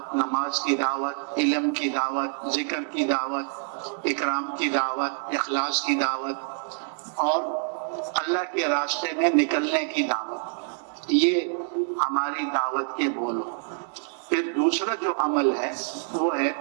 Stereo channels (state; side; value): silent; left; digital silence